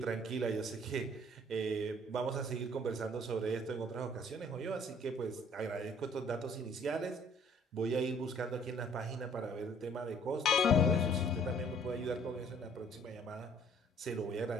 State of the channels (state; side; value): normal; both; correlation 0.57